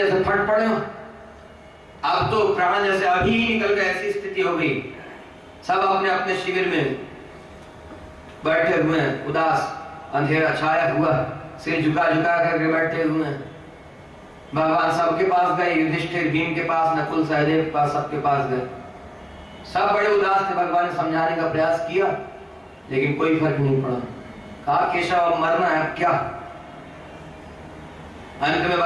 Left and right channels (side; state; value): both; identical; correlation 1.00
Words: फट पड़े। अब तो प्राण जैसे अभी ही निकल गए, ऐसी स्थिति हो गई। सब अपने अपने शिविर में बैठे हुए हैं, उदास, अंधेरा छाया हुआ, सिर झुका झुका करके बैठे हुए हैं। भगवान सबके पास गए, युधिष्ठिर, भीम के पास, नकुल, सहदेव के पास, सबके पास गए। सब बड़े उदास थे। भगवान ने समझाने का प्रयास किया लेकिन कोई फर्क नहीं पड़ा। कहा केशव अब मरना है, अब क्या? अंत में